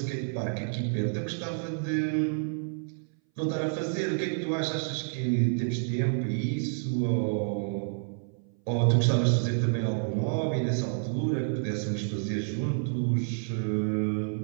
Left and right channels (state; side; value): silent; left; 58 dB below the other